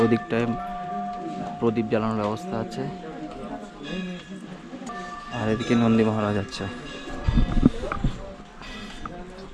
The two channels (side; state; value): both; identical; correlation 1.00